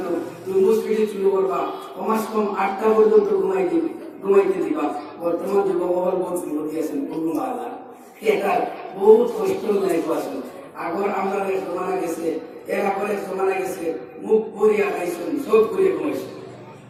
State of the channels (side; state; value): both; identical; correlation 1.00